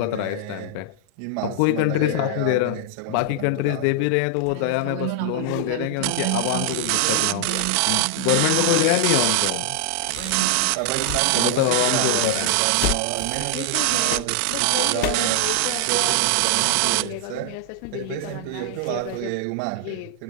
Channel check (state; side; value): different; both; correlation 0.00